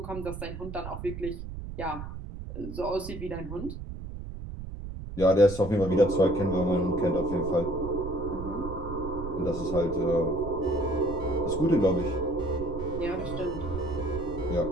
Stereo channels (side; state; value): right; noise; rumble, 9 dB below the sound